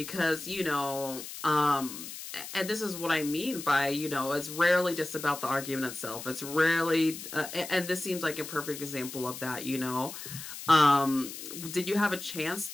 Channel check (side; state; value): left; noise; hiss, 10 dB below the sound